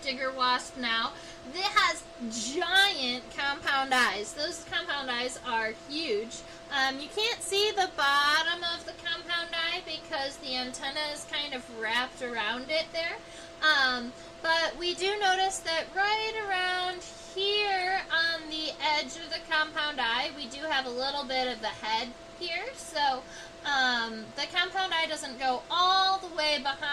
wasp now. It has giant compound eyes. Those compound eyes are huge. You can't see the bottom of the compound eye because the antenna is kind of wrapped around it there. But we do notice that right around here on the edge of the compound eye, we do have a little bit of the head here. So the compound eye doesn't go all the way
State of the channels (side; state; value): both; identical; correlation 1.00